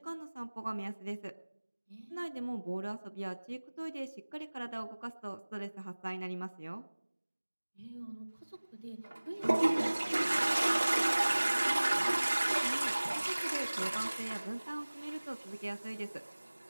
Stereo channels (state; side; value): inverted; both; correlation -1.00